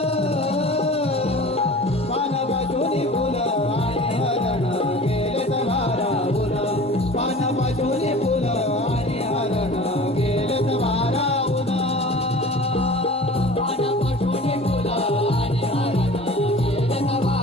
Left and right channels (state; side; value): normal; both; correlation 0.41